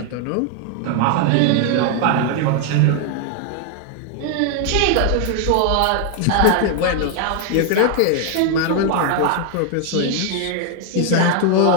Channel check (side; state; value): both; different; correlation 0.00